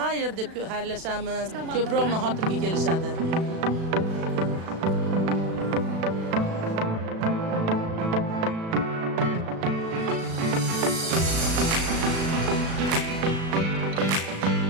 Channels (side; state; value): left; late; 36 ms